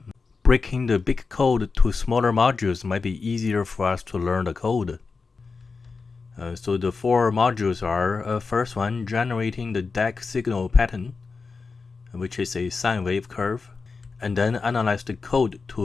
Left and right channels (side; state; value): right; quieter; 4.6 dB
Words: Breaking the big code to smaller modules might be easier for us to learn the code. So the 4 modules are, first one, generating the DAC signal pattern, which is a sine wave curve, and then analyze the code